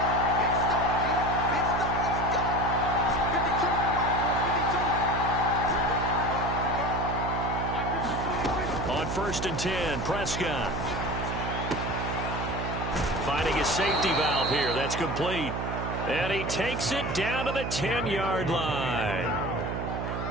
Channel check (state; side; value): noise; right; hum, 3 dB below the sound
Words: first and 10. Prescott finding a safety valve here. That's complete. And he takes it down to the 10-yard line.